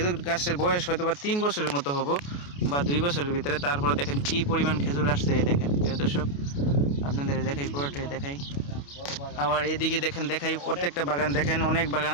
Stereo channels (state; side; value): late; right; 28 ms